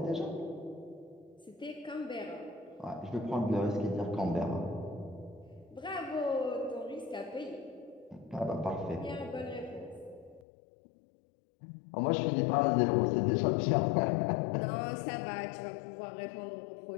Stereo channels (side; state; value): right; drops out; at 10.5 s